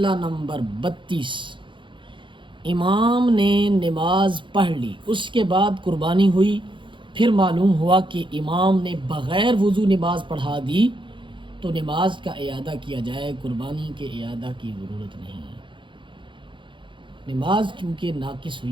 نمبر 32، امام نے نماز پڑھ لی، اس کے بعد قربانی ہوئی، پھر معلوم ہوا کہ امام نے بغیر وضو نماز پڑھا دی تو نماز کا اعادہ کیا جائے، قربانی کے اعادہ کی ضرورت نہیں۔ نماز چونکہ ناقص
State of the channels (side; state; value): left; late; 0.24 ms